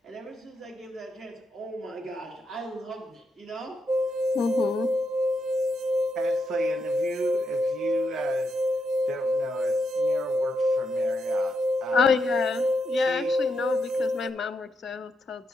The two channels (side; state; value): both; normal; correlation 0.81